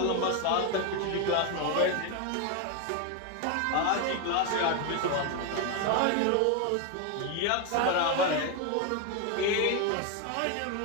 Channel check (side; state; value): both; different; correlation 0.01